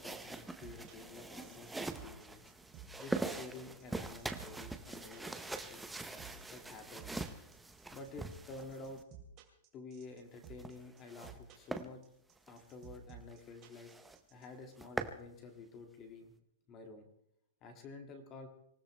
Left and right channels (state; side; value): normal; both; correlation 0.66